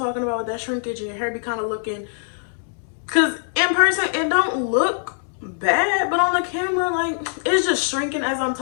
about with that shrinkage, and your hair be kind of looking, because in person it don't look bad, but on the camera, like, it's just shrinking as I'm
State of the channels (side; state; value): right; silent; digital silence